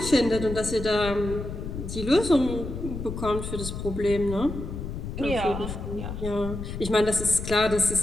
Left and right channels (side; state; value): left; noise; rumble, 7 dB below the sound